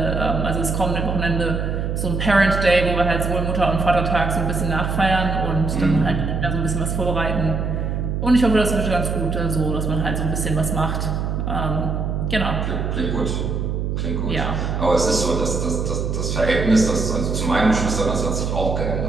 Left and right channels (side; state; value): right; noise; hum, 1 dB below the sound